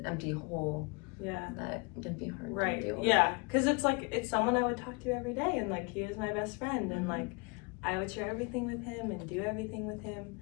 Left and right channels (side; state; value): right; quieter; 29.7 dB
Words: empty hole. That can be hard to deal with. Because it's someone I would talk to every day, and he was my best friend, and I would share everything with him and do everything with him,